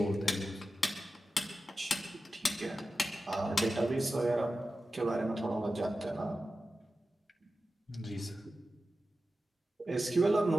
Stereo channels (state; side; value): normal; both; correlation 0.93